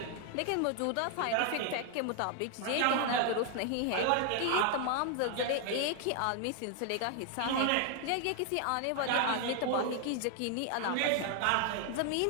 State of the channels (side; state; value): both; different; correlation 0.00